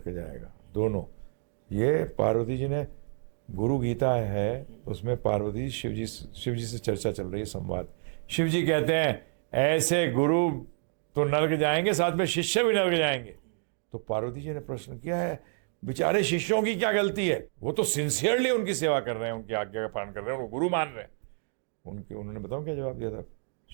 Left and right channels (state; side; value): silent; left; 58 dB below the other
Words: जाएगा, दोनों। ये पार्वती जी ने, गुरु गीता है, उसमें पार्वती शिव जी से चर्चा चल रही है, संवाद। शिव जी कहते हैं ऐसे गुरु तो नरक जाएंगे, साथ में शिष्य भी नरक जाएंगे। तो पार्वती जी ने प्रश्न किया है, बेचारे शिष्यों की क्या गलती है? वो तो सिंसियरली उनकी सेवा कर रहे हैं, उनकी आज्ञा का पालन कर रहे हैं, उनको गुरु मान रहे हैं। उन्होंने बताओ क्या जवाब दिया था